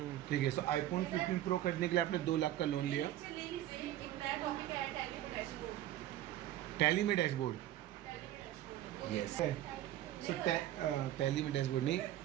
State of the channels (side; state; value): left; quieter; 13.3 dB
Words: ठीक है। सो आईफोन 15 प्रो खरीदने के लिए आपने 2 लाख का लोन लिया। टैली में डैशबोर्ड, यस। सो टैली में डैशबोर्ड नहीं,